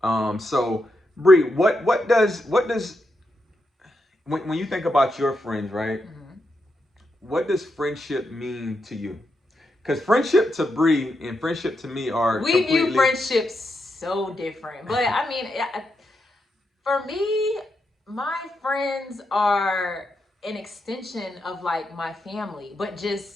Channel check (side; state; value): both; normal; correlation 0.84